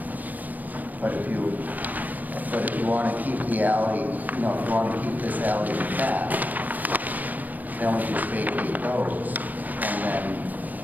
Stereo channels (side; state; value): left; late; 0.082 ms